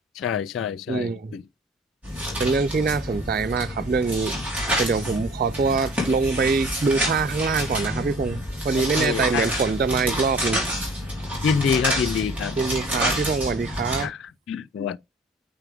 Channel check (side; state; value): both; normal; correlation 0.48